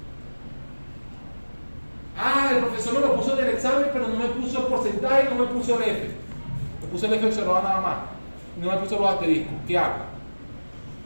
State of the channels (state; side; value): inverted; both; correlation -1.00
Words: Ah, el profesor me lo puso en el examen, pero no me puso el porcentaje y no me puso el F. Me puso el F observado nada más. No me puso los asteriscos. ¿Qué hago?